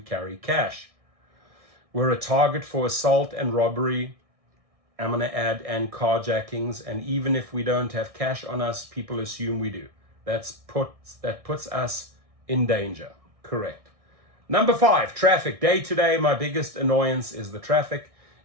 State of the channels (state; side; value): late; left; 1.6 ms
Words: cash. We're a target for assault and robbery, I'm going to add, and carjackings. And even if we don't have cash on us, people assume we do. That puts us in danger. Correct. Number 5, traffic. Day to day, my biggest annoyance is the traffic.